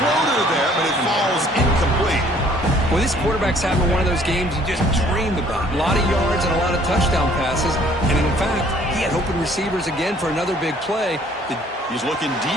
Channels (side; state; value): both; normal; correlation 0.58